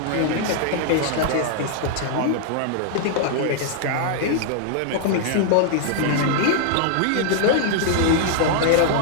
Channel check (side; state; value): both; different; correlation -0.01